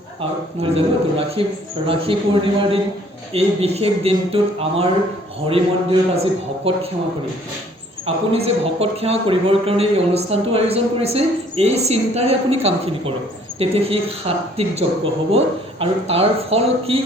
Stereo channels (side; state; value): both; normal; correlation 0.59